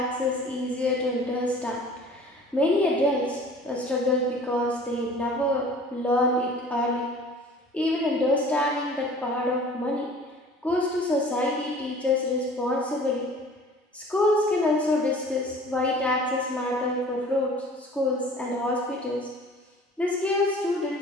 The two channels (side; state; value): both; normal; correlation 0.47